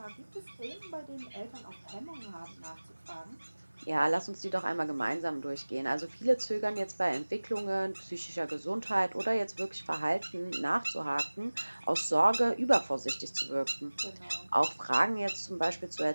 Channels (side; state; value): both; inverted; correlation -1.00